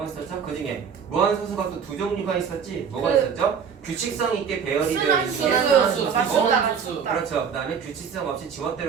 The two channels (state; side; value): quieter; left; 6.9 dB